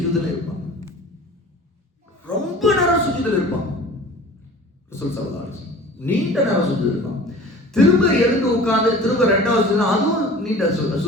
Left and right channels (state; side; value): normal; both; correlation 0.42